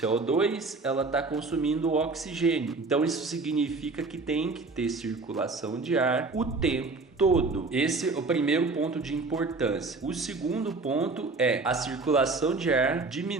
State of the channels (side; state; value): left; quieter; 3.8 dB